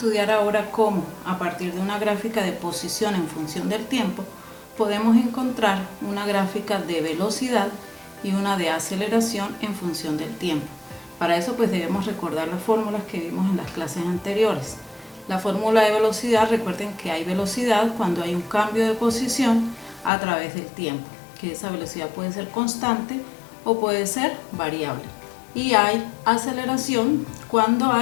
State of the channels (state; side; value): drops out; right; at 20.1 s